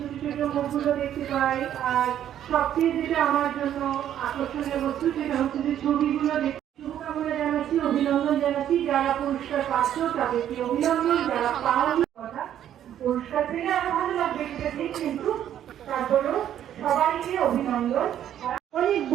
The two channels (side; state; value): left; quieter; 10.7 dB